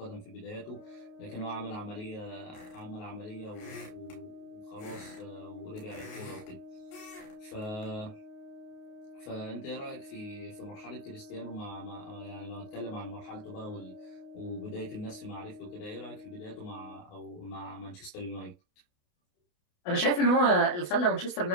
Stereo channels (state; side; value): late; right; 28 ms